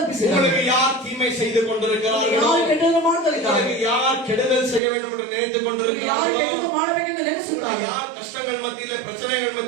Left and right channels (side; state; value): left; drops out; at 4.8 s